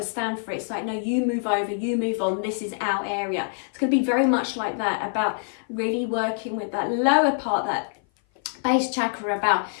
to stand for it. It's like, no, you move over, you move on, this is our area. It's going to be very much like that, about really working with that lower part, that base chakra, about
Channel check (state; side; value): silent; right; 56 dB below the other